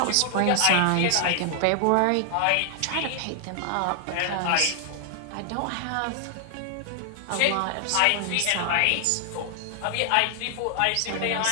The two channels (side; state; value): both; different; correlation 0.00